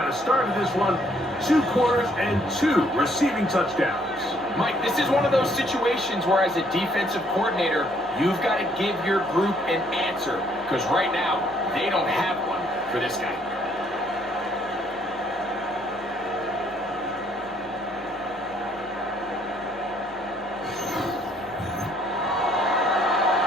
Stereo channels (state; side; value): normal; both; correlation 0.66